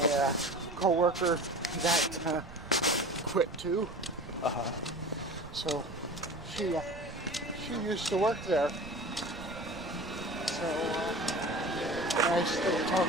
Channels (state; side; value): noise; right; rumble, 15 dB below the sound